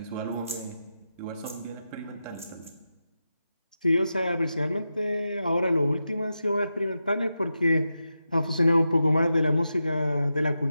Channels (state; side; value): inverted; both; correlation -0.89